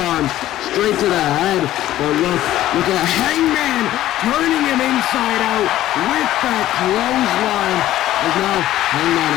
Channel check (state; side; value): quieter; right; 13.9 dB